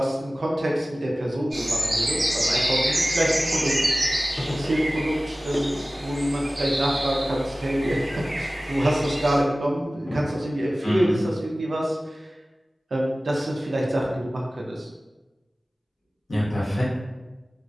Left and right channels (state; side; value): normal; both; correlation 0.97